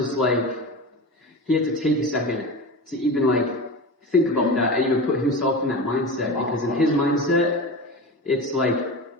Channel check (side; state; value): both; normal; correlation 0.27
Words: like, he had to take a second to even, like, think about that and even put himself in that mindset, because in his mindset, it's like,